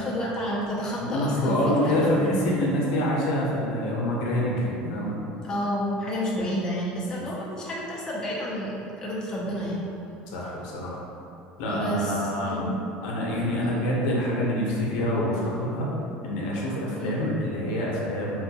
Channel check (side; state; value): both; normal; correlation 0.34